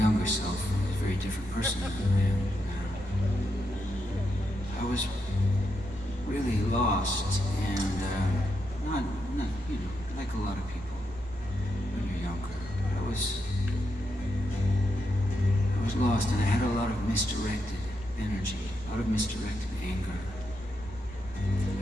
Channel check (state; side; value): noise; left; rumble, 18 dB below the sound